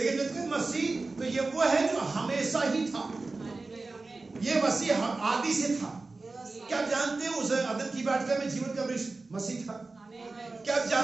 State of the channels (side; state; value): left; quieter; 3.6 dB